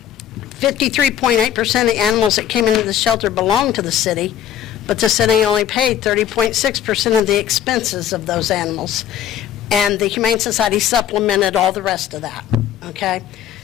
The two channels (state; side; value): quieter; right; 10.5 dB